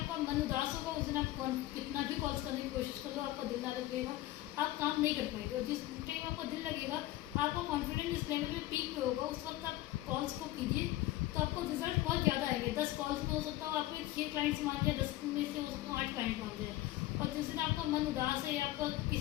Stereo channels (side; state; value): right; quieter; 16.0 dB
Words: मन उदास होगा उस दिन आप कितना भी कॉल्स करने की कोशिश कर लो आपका दिल ना लगेगा, आप काम नहीं कर पाएंगे। और जिस टाइम आपका दिल लगेगा आपका कॉन्फिडेंस इस लेवल पे पीक पे होगा, उस वक्त आप कॉल्स को कीजिए तो आपको रिजल्ट बहुत ज़्यादा आएंगे। 10 कॉल्स में हो सकता हो आपके 6 क्लाइंट्स मान जाए, 10 में से हो सकता हो 8 क्लाइंट मान जाए। और जिस दिन आपका मन उदास है या आपका